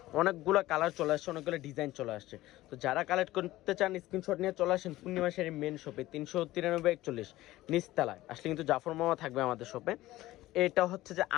অনেকগুলো কালার চলে আসছে, অনেকগুলো ডিজাইন চলে আসছে। তো যারা কালেক্ট করতে চান স্ক্রিনশট নিয়ে চলে আসেন পূর্ণিমা শাড়ির মেন শপে, 393 নিচতলায় আসলে কিন্তু জাফর মামা থাকবে আমাদের শপে। এটা হচ্ছে যে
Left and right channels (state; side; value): quieter; right; 16.7 dB